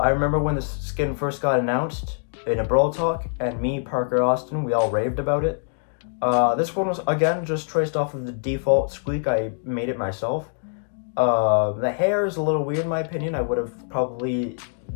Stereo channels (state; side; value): silent; right; digital silence